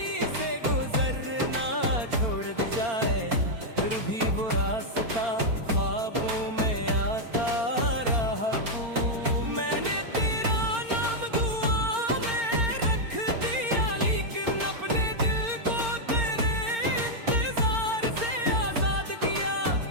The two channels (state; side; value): late; left; 4.4 ms